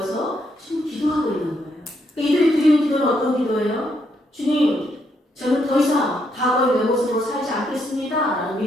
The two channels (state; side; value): normal; both; correlation 0.76